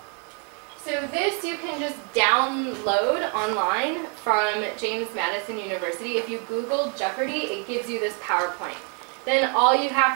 So this you can just download online from James Madison University. If you Google Jeopardy, it gives you this PowerPoint. Then all you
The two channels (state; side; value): quieter; left; 37.5 dB